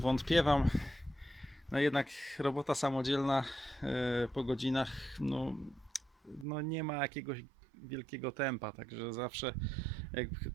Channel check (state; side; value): drops out; left; at 6.5 s